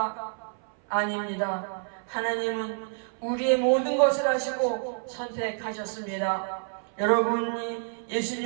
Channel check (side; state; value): left; silent; 55 dB below the other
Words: 아닙니다. 하나님은 우리의 모든 것을 아시고 선택하셨습니다. 여러분이